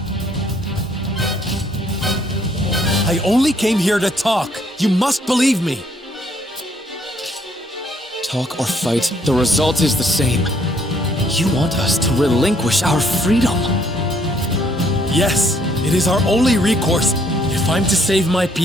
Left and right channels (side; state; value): both; normal; correlation 0.67